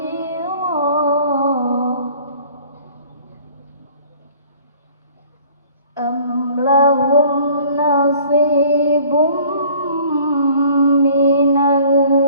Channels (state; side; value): inverted; both; correlation -0.52